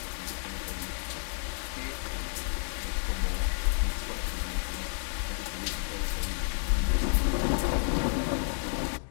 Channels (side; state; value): right; silent; 57 dB below the other